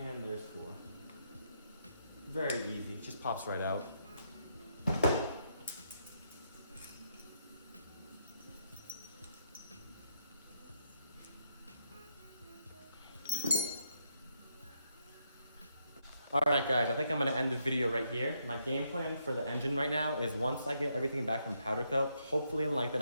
there's 4. Very easy, just pops right out. Alright guys, I think I'm going to end the video right here. My game plan for the engine right now is once I get everything back from powder coat, hopefully in like the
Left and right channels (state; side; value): inverted; both; correlation -0.77